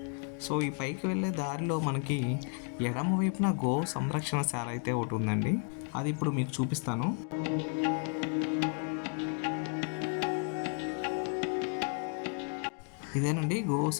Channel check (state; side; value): quieter; right; 38.0 dB